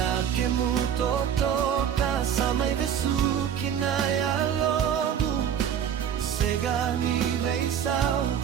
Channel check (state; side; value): quieter; left; 8.9 dB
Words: kemu totoka Samai vesuki na ya lobu Sega ni veisau